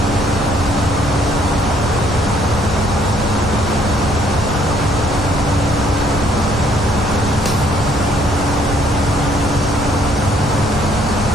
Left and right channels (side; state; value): both; normal; correlation 0.64